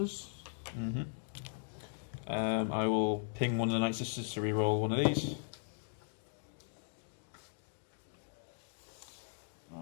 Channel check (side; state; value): right; silent; digital silence